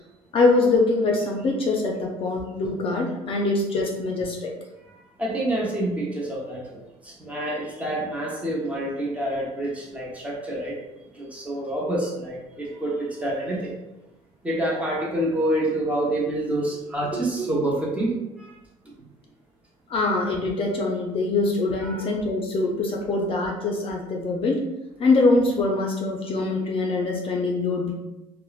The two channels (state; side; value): normal; both; correlation 0.54